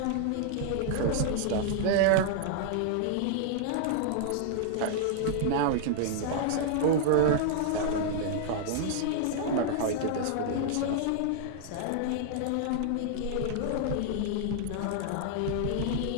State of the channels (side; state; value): both; different; correlation -0.01